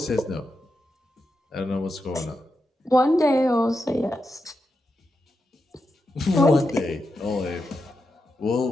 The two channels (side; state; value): both; normal; correlation 0.87